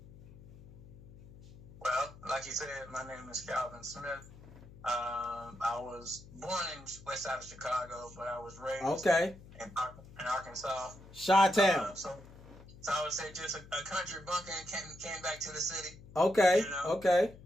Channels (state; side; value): noise; left; hum, 19 dB below the sound